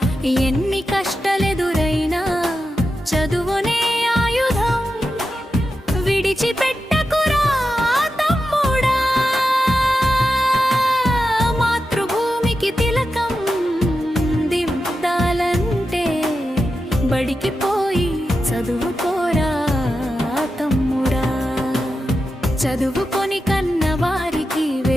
ఎన్ని కష్టాలెదురైనా చదువునే ఆయుధం, విడిచిపెట్టకురా తమ్ముడా. మాతృభూమికి తిలకం దిద్దాలంటే బడికి పోయి చదువుకోరా తమ్ముడా. చదువుకొని కన్నవారికి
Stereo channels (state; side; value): normal; both; correlation 0.90